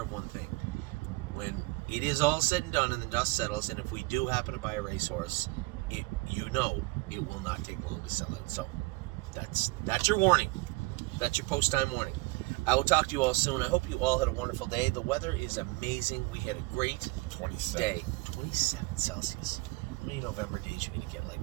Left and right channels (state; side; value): quieter; left; 24.0 dB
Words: of one thing. When it is all said and done and the dust settles, and if we do happen to buy a racehorse, it will not take long to sell out. So that's your warning. That's your post-time warning. I will talk to you all soon. I hope you all had a wonderful day. The weather is amazing. We had a great 27. day. 27 Celsius. How many November days you're going to get